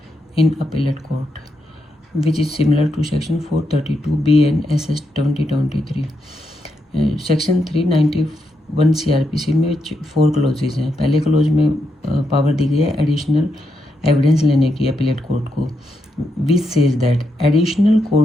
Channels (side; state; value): both; normal; correlation 0.82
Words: in appellate court, which is similar to Section 432B and SS 2023. Section 391 CRPC में 4 क्लोजेज हैं। पहले क्लोज में पावर दी गई है एडिशनल एविडेंस लेने की अपीलेट कोर्ट को, which says that additional